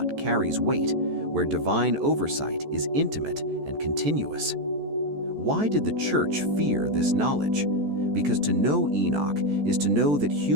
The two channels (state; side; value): late; left; 14 ms